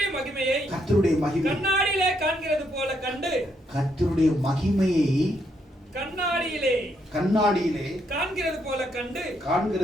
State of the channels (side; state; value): both; normal; correlation 0.76